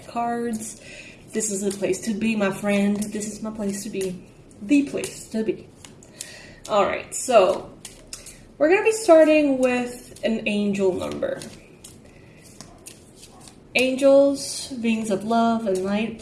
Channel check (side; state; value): both; identical; correlation 1.00